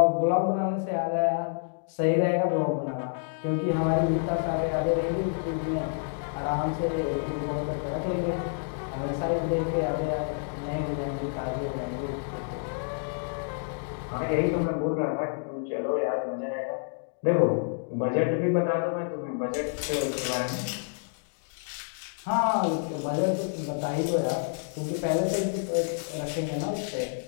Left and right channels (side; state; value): right; silent; digital silence